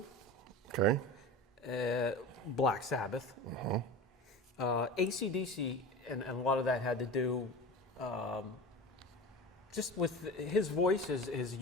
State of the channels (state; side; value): normal; both; correlation 0.31